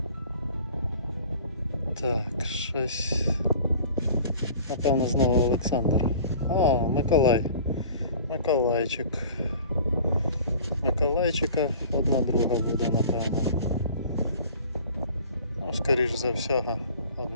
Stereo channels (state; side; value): inverted; both; correlation -0.45